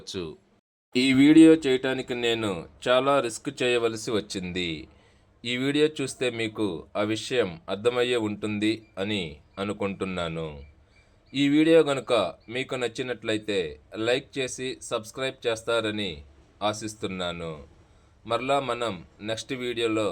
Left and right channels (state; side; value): identical; both; correlation 1.00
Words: ఈ వీడియో చేయటానికి నేను చాలా రిస్క్ చేయవలసి వచ్చింది. ఈ వీడియో చూస్తే మీకు ఆ విషయం అర్థమయ్యే ఉంటుంది అని అనుకుంటున్నాను. ఈ వీడియో కనుక మీకు నచ్చినట్లయితే లైక్ చేసి సబ్స్క్రైబ్ చేస్తారని ఆశిస్తున్నాను. మరలా మనం నెక్స్ట్ వీడియోలో